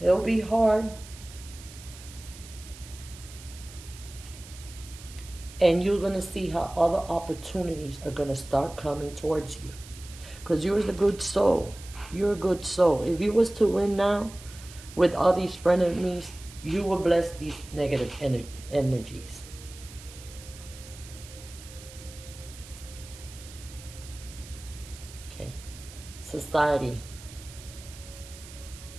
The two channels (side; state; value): right; noise; hiss, 17 dB below the sound